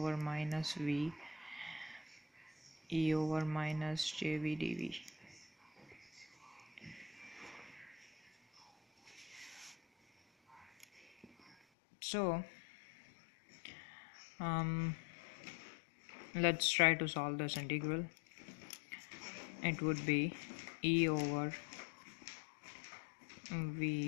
minus v e over minus jv dv. So let's try to solve this integral. It would be e over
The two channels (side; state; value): right; drops out; at 11.6 s